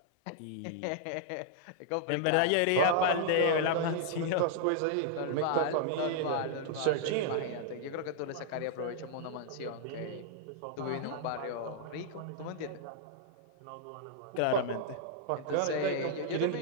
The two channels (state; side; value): different; both; correlation -0.01